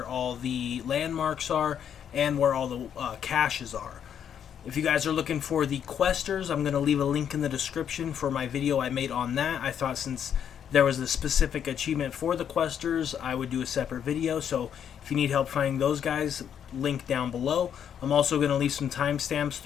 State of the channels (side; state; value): right; quieter; 8.7 dB